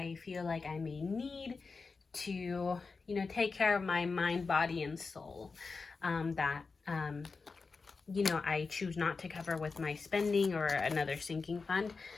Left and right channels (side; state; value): right; quieter; 4.5 dB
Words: feel like I may need to, you know, take care of my mind, body, and soul. You know, I choose not to cover with my spending or another sinking fund.